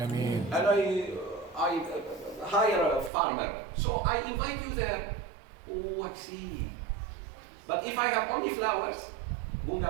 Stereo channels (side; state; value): left; drops out; at 3.1 s